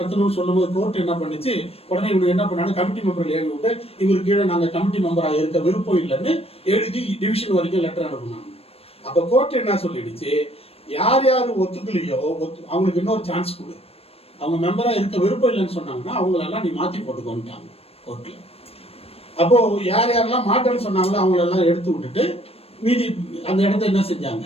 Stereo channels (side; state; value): right; late; 0.28 ms